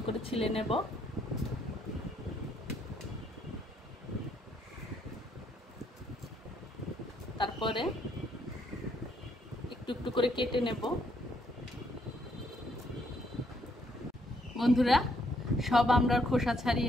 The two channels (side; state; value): both; normal; correlation 0.71